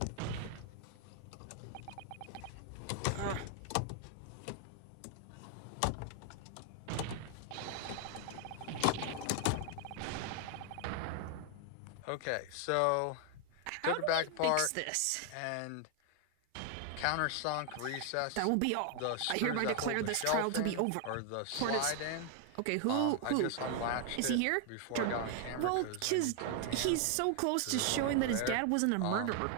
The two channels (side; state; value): both; different; correlation 0.00